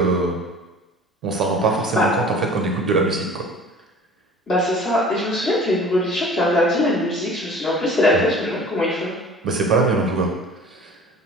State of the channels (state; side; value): normal; both; correlation 0.44